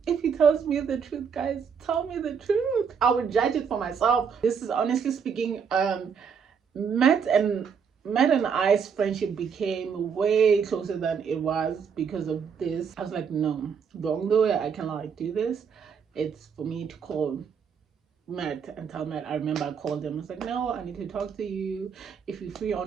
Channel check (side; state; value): left; quieter; 6.6 dB